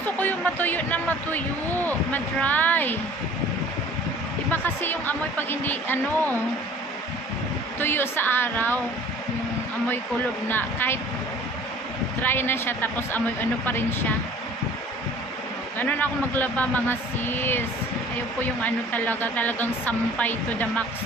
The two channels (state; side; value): normal; both; correlation 0.49